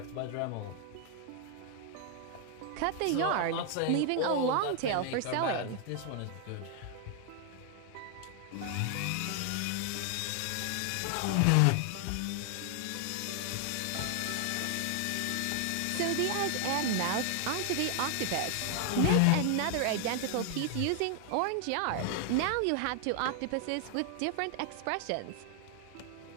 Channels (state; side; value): different; both; correlation 0.00